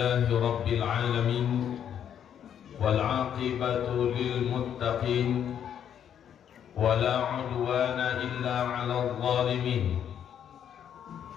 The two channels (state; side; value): quieter; right; 9.1 dB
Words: رب العالمين والعاقبة للمتقين ولا عدوان إلا على الظالمين